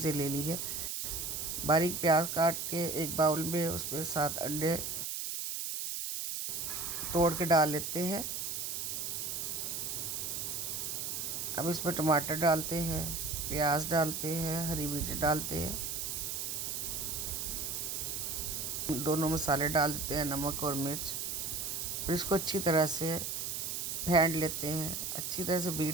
ले ली है। बारीक प्याज काट के एक बाउल में उसमें 7 अंडे तोड़ के डाल लेते हैं। अब इसमें टमाटर डालते हैं, प्याज डालते हैं, हरी मिर्च डालते हैं, दोनों मसाले डाल देते हैं, नमक और मिर्च। फिर इसको अच्छी तरह से फेंट लेते हैं, अच्छी तरह से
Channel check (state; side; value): noise; right; hiss, 3 dB below the sound